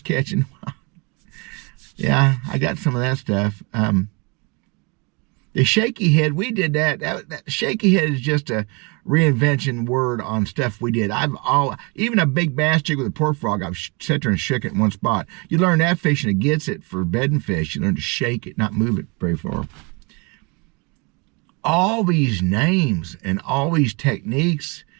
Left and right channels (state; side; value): quieter; left; 30.3 dB